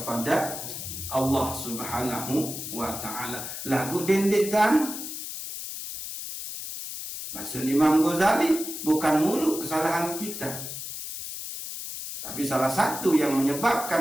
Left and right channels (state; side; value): noise; left; hiss, 7 dB below the sound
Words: Allah Subhanahu wa ta'ala. Lagu dendek kan? Bahasa Imam Ghazali, bukan mulu kesalahan kita, tapi salah satu yang